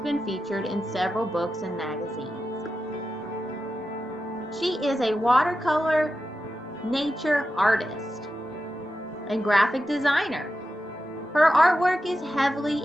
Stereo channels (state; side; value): normal; both; correlation 0.90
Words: featured in several books and magazines. She is a watercolor nature artist and graphic designer. Her artwork is heavily